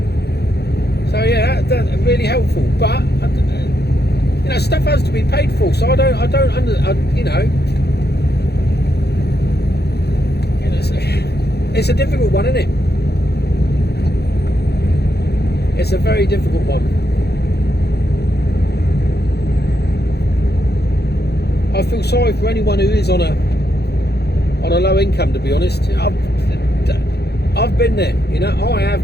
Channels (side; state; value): right; late; 0.48 ms